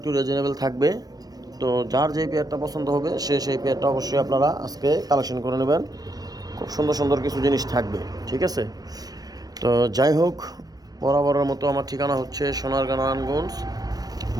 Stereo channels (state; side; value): late; left; 0.19 ms